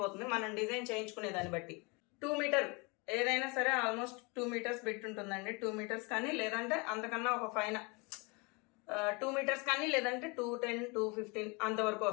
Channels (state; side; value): quieter; right; 29.1 dB